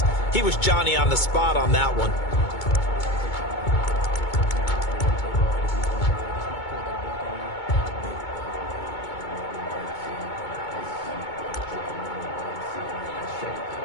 He was Johnny on the spot on that one.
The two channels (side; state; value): right; late; 2.2 ms